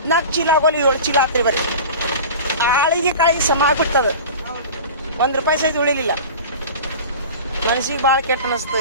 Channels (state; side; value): inverted; both; correlation -0.35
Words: ಚೀಲ ಆಗೋಲಿ 7 ಚೀಲ ಆತ್ರಿ. ಬರ್ರಿ ಆಳಿಗೆ ಕಾಯಿ ಸಮ ಆಗ್ಬಿಡ್ತದ. ₹1 ಸಹಿತ ಉಳಿಲಿಲ್ಲ. ಮನಸ್ಸಿಗೆ ಭಾಳ ಕೆಟ್ಟ